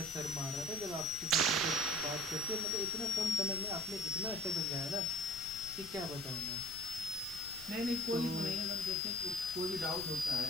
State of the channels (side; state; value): left; noise; rumble, 18 dB below the sound